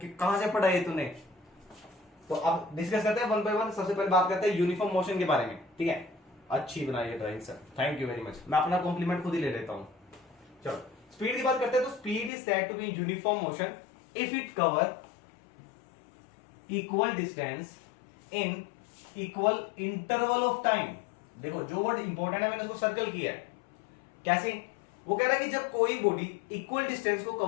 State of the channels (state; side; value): drops out; right; at 12.3 s